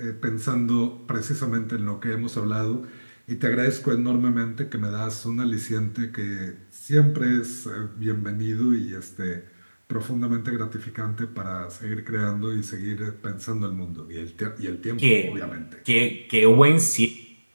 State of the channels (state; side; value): inverted; both; correlation -1.00